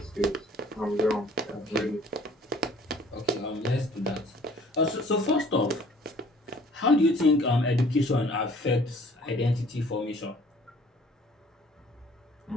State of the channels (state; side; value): normal; both; correlation 0.54